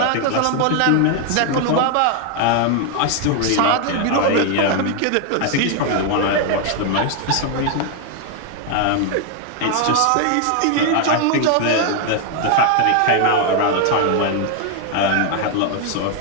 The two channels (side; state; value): both; different; correlation 0.00